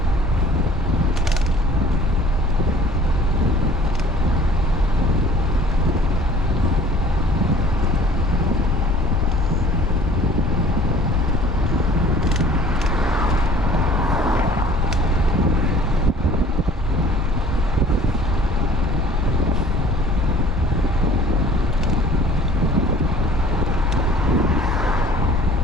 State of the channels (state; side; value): normal; both; correlation 0.51